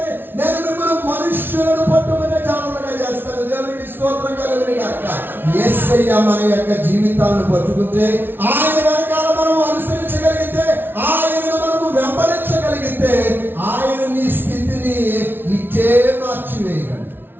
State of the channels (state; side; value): late; left; 0.10 ms